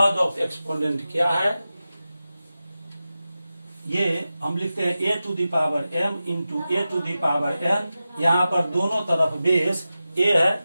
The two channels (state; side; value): inverted; both; correlation -0.93